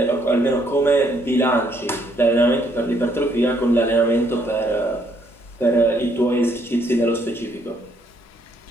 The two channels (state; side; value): normal; both; correlation 0.69